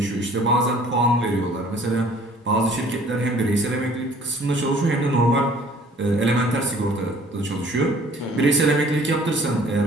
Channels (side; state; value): both; normal; correlation 0.54